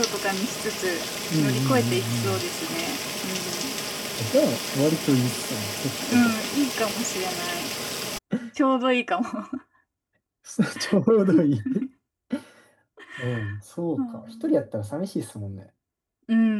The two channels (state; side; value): identical; both; correlation 1.00